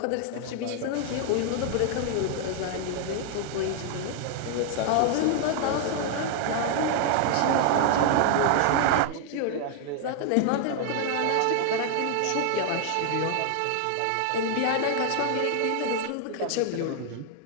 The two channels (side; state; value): both; different; correlation 0.00